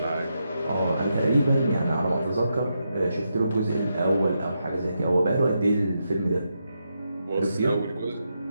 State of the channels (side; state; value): both; inverted; correlation -0.84